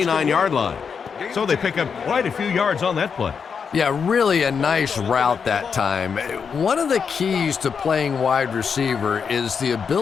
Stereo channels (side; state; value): right; quieter; 6.2 dB